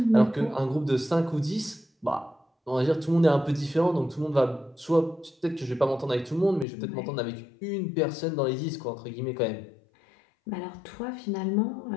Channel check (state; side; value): drops out; right; at 6.7 s